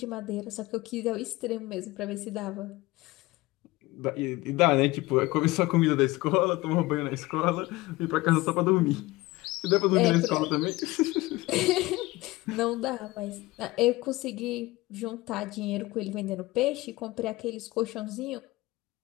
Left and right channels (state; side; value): quieter; right; 20.0 dB